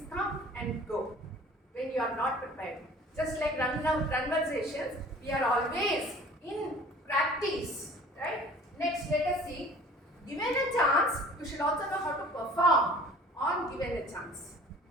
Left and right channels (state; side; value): normal; both; correlation 0.47